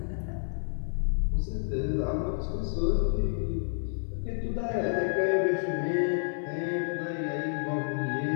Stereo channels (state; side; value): silent; right; 58 dB below the other